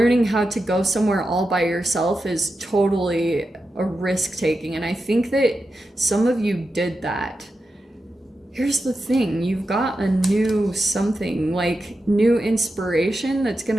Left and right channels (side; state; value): both; normal; correlation 0.89